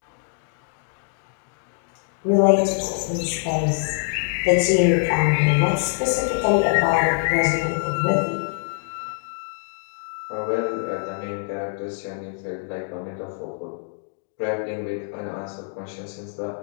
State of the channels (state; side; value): silent; right; digital silence